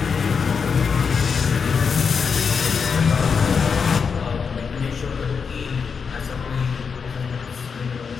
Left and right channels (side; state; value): right; quieter; 5.8 dB